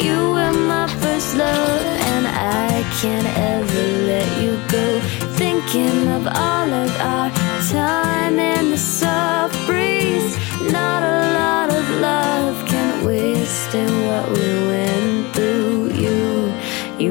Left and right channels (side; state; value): right; quieter; 24.9 dB